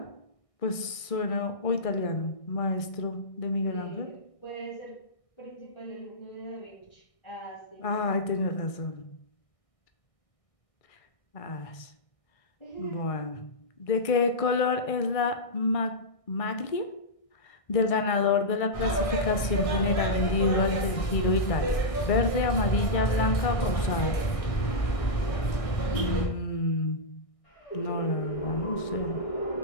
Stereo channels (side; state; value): right; late; 1.6 ms